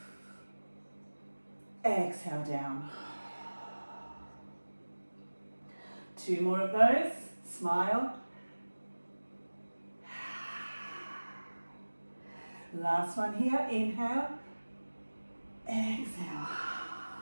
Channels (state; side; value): inverted; both; correlation -1.00